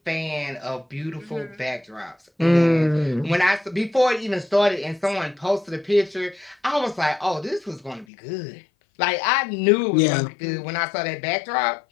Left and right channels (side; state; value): right; drops out; at 8.1 s